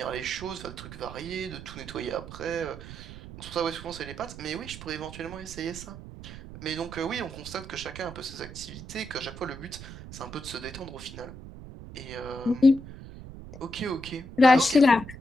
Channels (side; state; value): right; noise; rumble, 13 dB below the sound